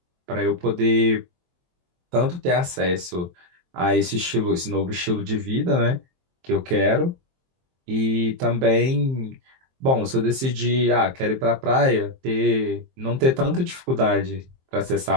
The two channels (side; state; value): left; late; 23 ms